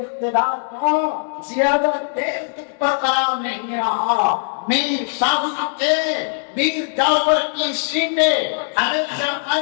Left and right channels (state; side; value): silent; right; digital silence